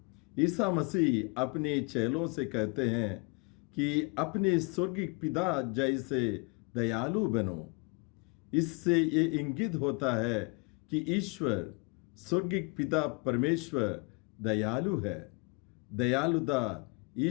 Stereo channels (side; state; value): right; quieter; 31.9 dB